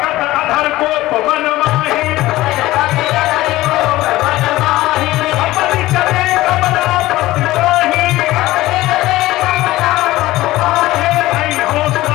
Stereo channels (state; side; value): quieter; right; 17.2 dB